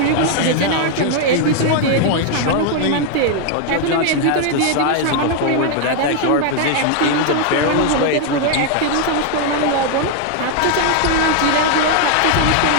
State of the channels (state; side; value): different; both; correlation 0.00